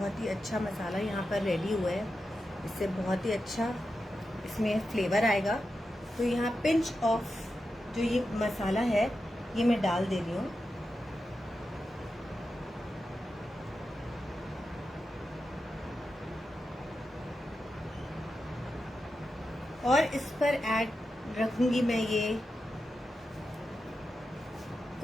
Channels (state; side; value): normal; both; correlation 0.90